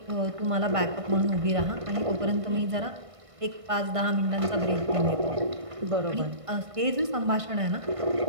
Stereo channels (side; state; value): left; late; 1.6 ms